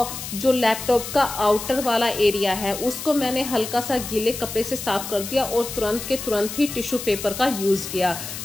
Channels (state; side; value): noise; left; hiss, 8 dB below the sound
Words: जो लैपटॉप का आउटर वाला एरिया है उसको मैंने हल्का सा गीले कपड़े से साफ कर दिया और तुरंत के तुरंत ही टिश्यू पेपर का यूज़ किया।